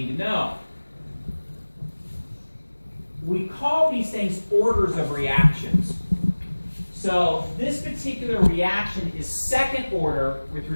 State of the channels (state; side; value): inverted; both; correlation -1.00